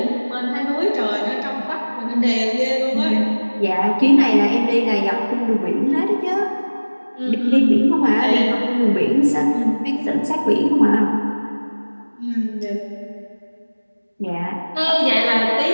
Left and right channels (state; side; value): inverted; both; correlation -1.00